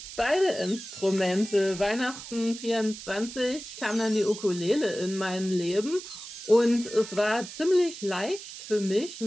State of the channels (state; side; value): noise; right; hiss, 12 dB below the sound